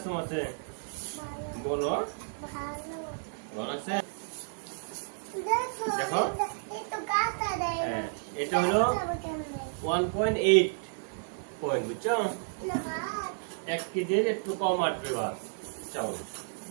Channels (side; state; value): left; silent; digital silence